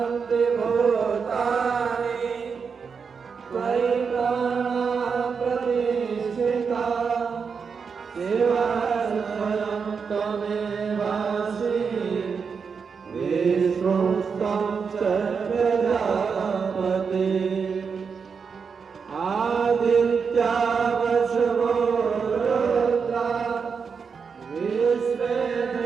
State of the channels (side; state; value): left; quieter; 5.8 dB